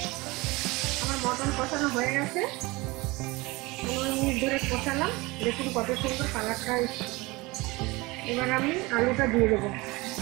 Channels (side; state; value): left; quieter; 23.1 dB